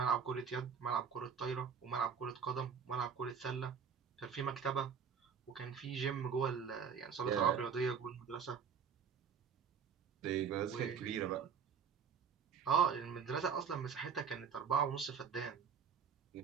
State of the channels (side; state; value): left; quieter; 6.8 dB